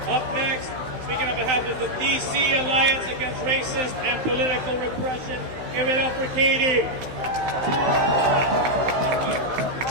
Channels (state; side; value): late; left; 16 ms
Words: Up next, speaking on behalf of the DC Alliance Against Racist and Political Repression, give it up for Katie.